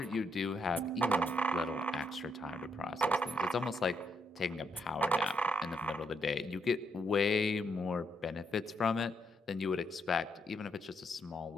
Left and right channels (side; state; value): both; normal; correlation 0.77